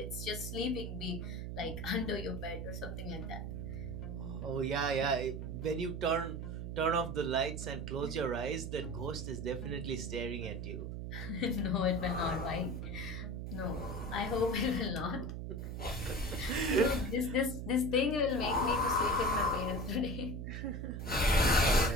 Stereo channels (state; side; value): noise; right; hum, 5 dB below the sound